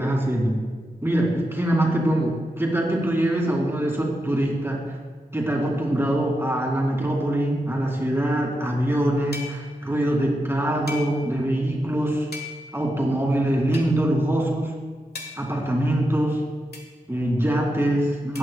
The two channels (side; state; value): both; normal; correlation 0.87